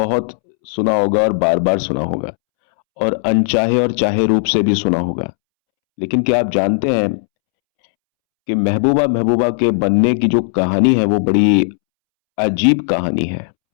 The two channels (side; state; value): right; silent; 69 dB below the other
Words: सुना होगा और बार बार सुना होगा, और अनचाहे और चाहे रूप से भी सुना होगा। लेकिन क्या आप जानते हैं कि महबूबा महबूबा के बनने की जो कहानी है वो बड़ी अजीब कहानी है।